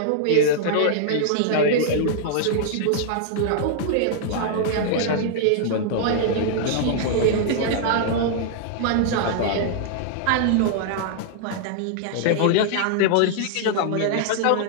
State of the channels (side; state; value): both; different; correlation -0.01